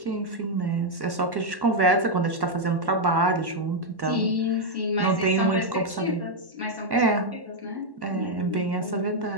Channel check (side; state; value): left; late; 1.1 ms